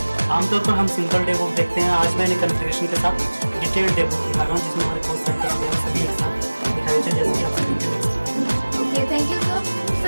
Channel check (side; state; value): both; inverted; correlation -1.00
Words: आमतौर पर हम सिंपल डेबुक देखते हैं, आज मैंने कन्फिगरेशन के साथ डिटेल्ड डेबुक दिखा रहा हूँ, जिसमें हमारे कोर्स सेंटर्स वगैरह सभी एक साथ दिखाई देते हैं, जैसे कि आप स्क्रीन पे देख सकते हैं। Okay, thank you sir.